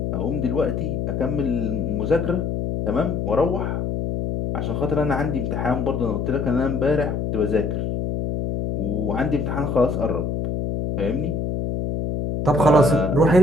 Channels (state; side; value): noise; left; hum, 1 dB below the sound